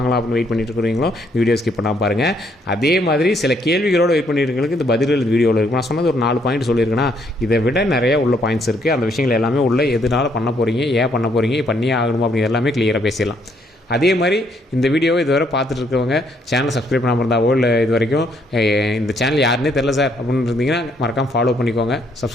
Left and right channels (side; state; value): both; normal; correlation 0.70